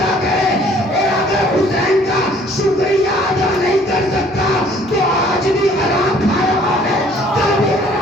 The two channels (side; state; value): both; normal; correlation 0.57